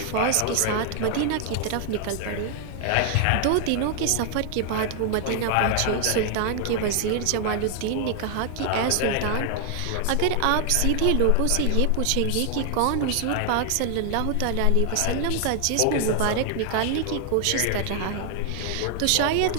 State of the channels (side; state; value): both; different; correlation 0.00